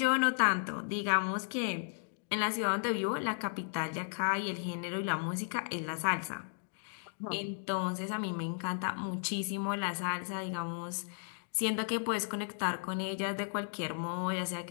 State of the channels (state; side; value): silent; right; digital silence